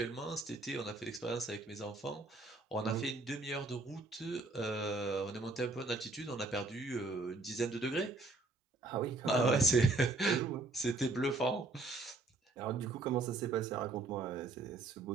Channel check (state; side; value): quieter; left; 3.3 dB